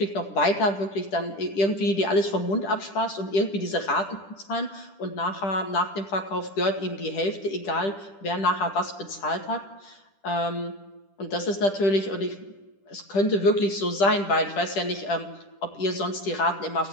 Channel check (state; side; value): late; right; 10 ms